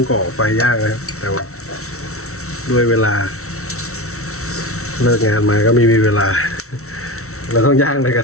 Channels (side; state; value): right; late; 0.63 ms